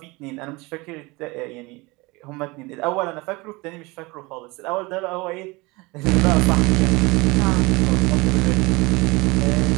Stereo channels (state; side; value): quieter; left; 24.2 dB